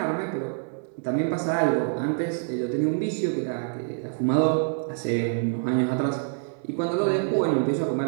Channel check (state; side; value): silent; left; digital silence